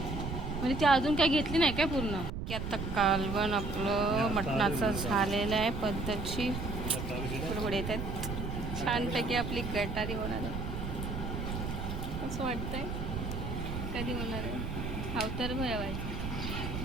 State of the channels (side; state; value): right; noise; rumble, 4 dB below the sound